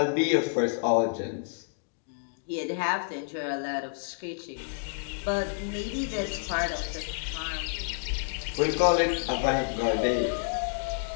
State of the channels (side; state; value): right; silent; digital silence